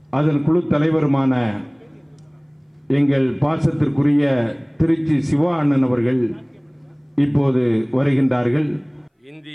அதன் குழு தலைவருமான எங்கள் பாசத்திற்குரிய திருச்சி சிவா அண்ணன் அவர்கள் இப்போது வருகின்றார்கள்.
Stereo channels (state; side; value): identical; both; correlation 1.00